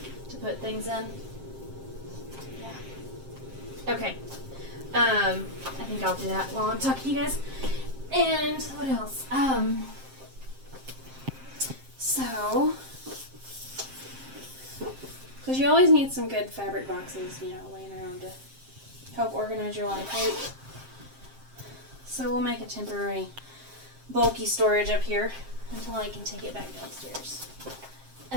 to put things in. Yeah. Okay. I think I'll do that while I'm talking to you guys. And what else? So, because you always need some good fabric boxes, laying around to help organize your life, right? So we'll make a temporary bulky storage up here until I can take it back downstairs.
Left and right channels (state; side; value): late; left; 7.6 ms